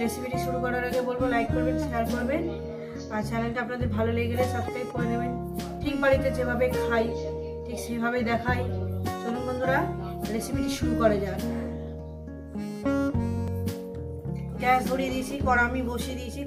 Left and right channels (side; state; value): both; identical; correlation 1.00